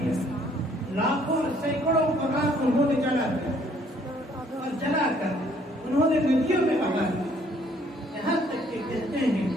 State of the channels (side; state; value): both; normal; correlation 0.63